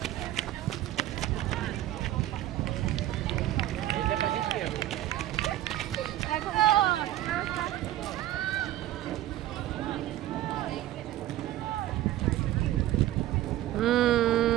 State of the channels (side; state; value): left; quieter; 14.0 dB